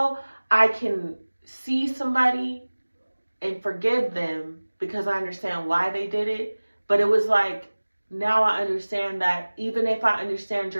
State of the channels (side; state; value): both; inverted; correlation -1.00